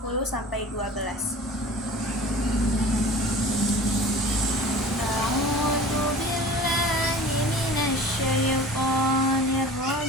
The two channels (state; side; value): normal; both; correlation 0.41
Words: sampai 12. A'udzu billahi minasyaitonir